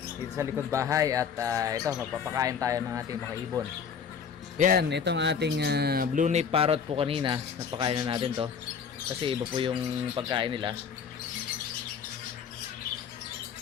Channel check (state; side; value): quieter; right; 6.8 dB